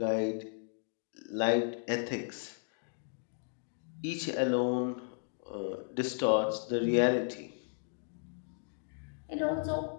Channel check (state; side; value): silent; right; digital silence